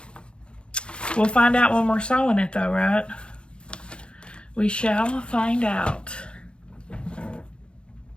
We'll find out when we're sewing it though, right? We shall find out.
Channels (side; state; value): right; late; 0.055 ms